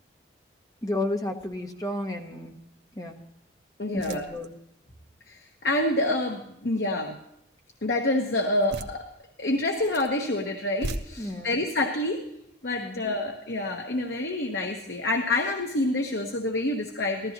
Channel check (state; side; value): normal; both; correlation 0.14